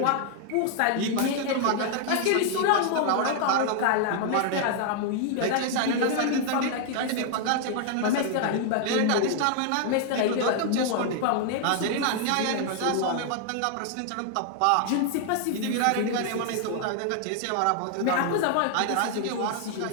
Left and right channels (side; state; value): both; different; correlation 0.00